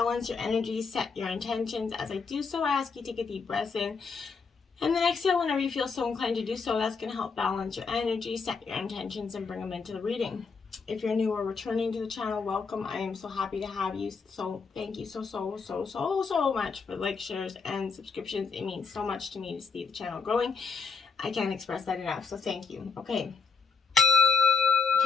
your energy, set your intentions. As I do so, I ask you to take a deep breath in. And then exhale whenever you feel so inclined to do so. That's going to help balance your energy, set your intentions, and bring them into the reading. If you're new or returning to the channel, welcome. I am so happy to have you. So thank you so much for likes, shares, and subscriptions. It means so much to me to see the channel growing. I can't express that enough, so thank you. Okay.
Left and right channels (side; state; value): right; quieter; 5.1 dB